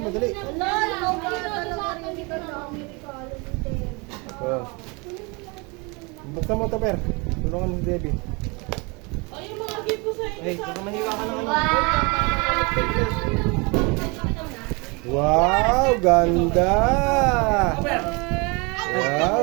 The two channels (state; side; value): quieter; left; 28.9 dB